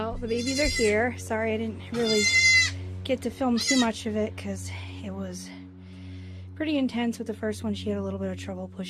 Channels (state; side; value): identical; both; correlation 1.00